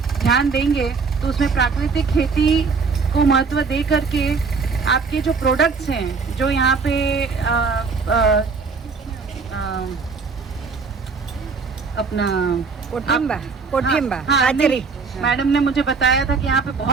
ध्यान देंगे तो उसमें प्राकृतिक खेती को महत्व दे करके आपके जो प्रोडक्ट्स हैं, जो यहाँ पे अपना कोठिम्बा नहीं, मैडम ने मुझे बताया था कि यहाँ पे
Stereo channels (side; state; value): left; quieter; 4.9 dB